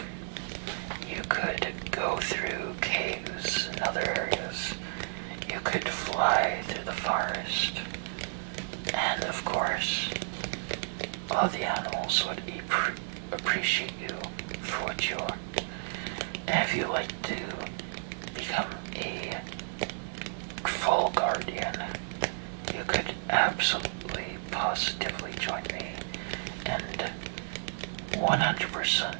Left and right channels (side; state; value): left; silent; 56 dB below the other